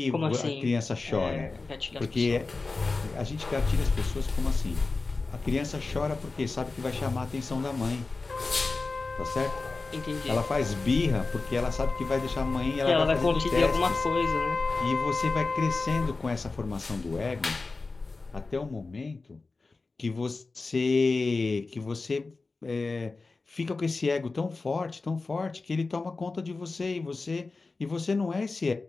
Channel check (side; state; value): right; quieter; 3.8 dB